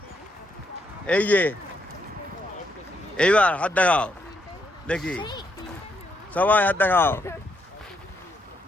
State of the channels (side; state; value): both; normal; correlation 0.77